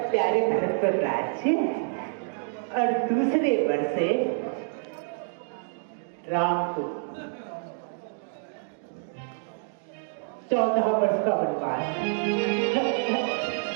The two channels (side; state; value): left; silent; digital silence